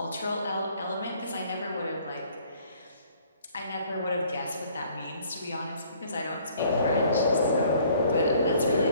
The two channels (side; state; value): both; inverted; correlation -0.59